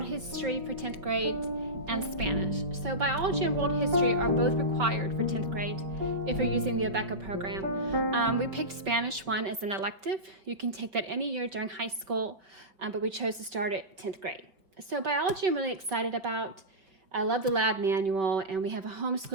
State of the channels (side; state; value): left; late; 5.2 ms